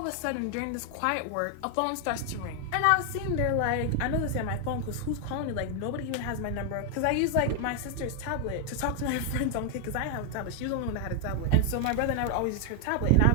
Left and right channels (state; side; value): different; both; correlation 0.00